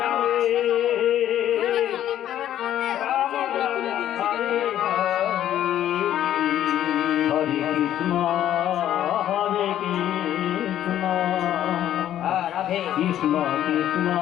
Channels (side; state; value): right; quieter; 11.6 dB